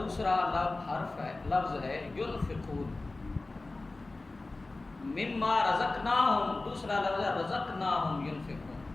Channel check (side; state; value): right; quieter; 3.2 dB